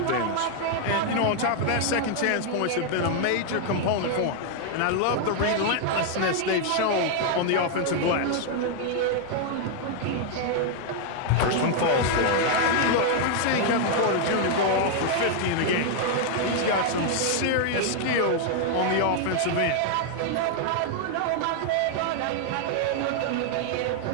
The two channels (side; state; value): both; different; correlation 0.00